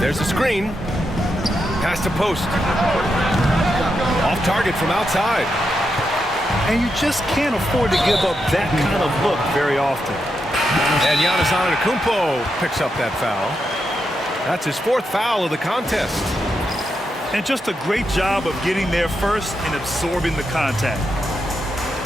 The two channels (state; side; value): normal; both; correlation 0.84